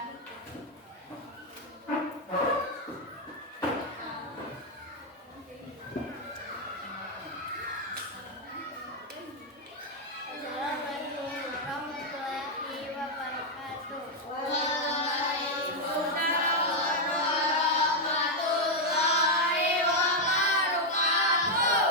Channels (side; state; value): both; normal; correlation 0.01